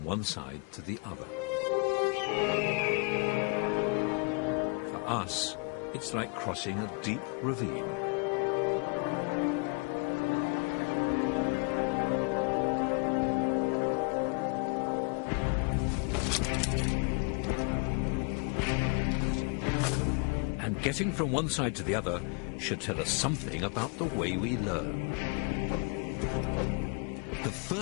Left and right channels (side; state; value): right; quieter; 33.9 dB